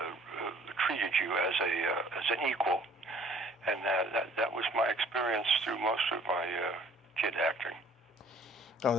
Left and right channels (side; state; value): both; normal; correlation 0.56